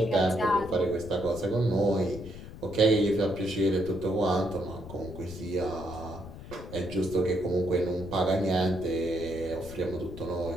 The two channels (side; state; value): left; noise; rumble, 13 dB below the sound